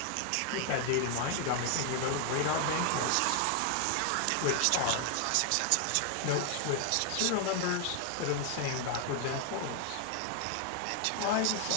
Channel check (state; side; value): different; both; correlation 0.00